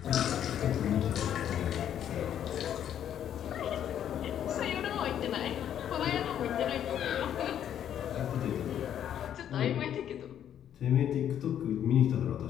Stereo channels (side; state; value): right; quieter; 10.0 dB